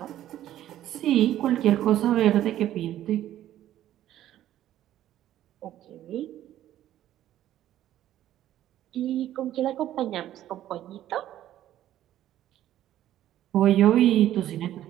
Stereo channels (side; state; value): left; quieter; 12.6 dB